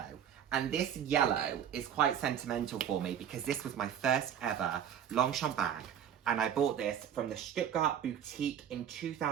And this yellow is quite sentimental for me because this was my first ever Longchamp bag. And I bought this from the Stuttgart boutique in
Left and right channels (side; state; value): left; quieter; 9.2 dB